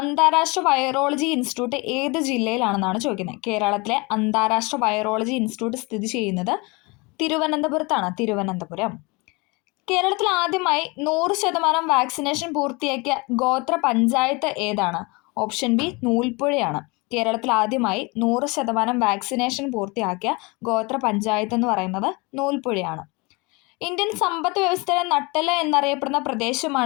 വൈറോളജി ഇൻസ്റ്റിറ്റ്യൂട്ട് ഏത് ജില്ലയിലാണെന്നാണ് ചോദിക്കുന്നത്? കേരളത്തിലെ അന്താരാഷ്ട്ര വൈറോളജി ഇൻസ്റ്റിറ്റ്യൂട്ട് സ്ഥിതി ചെയ്യുന്നത് തിരുവനന്തപുരത്താണ്. തിരുവനന്തപുരം. കേരളത്തിൽ ആദ്യമായി 100% വാക്സിനേഷൻ പൂർത്തിയാക്കിയ ഗോത്ര പഞ്ചായത്ത് ഏതാണ്? ഓപ്ഷൻ ബി, നൂൽപ്പുഴയാണ്. കേരളത്തിൽ ആദ്യമായി 100% വാക്സിനേഷൻ പൂർത്തിയാക്കിയ ഗോത്ര പഞ്ചായത്ത് എന്ന് പറയുന്നത് നൂൽപ്പുഴയാണ്. ഇന്ത്യൻ സമ്പദ് വ്യവസ്ഥയുടെ നട്ടെല്ല് എന്നറിയപ്പെടുന്ന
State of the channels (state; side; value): quieter; right; 27.0 dB